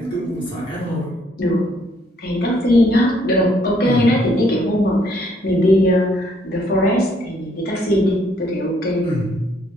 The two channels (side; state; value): both; normal; correlation 0.67